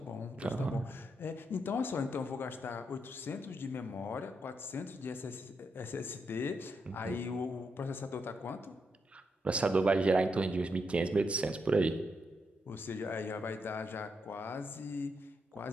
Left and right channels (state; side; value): normal; both; correlation 0.81